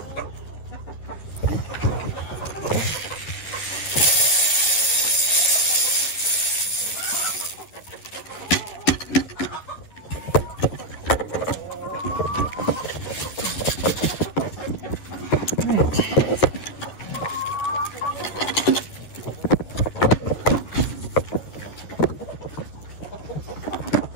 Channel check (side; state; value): right; late; 10 ms